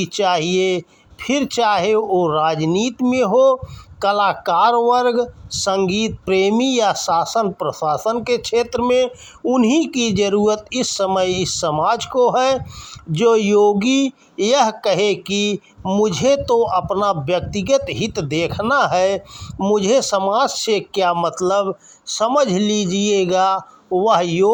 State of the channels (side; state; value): both; identical; correlation 1.00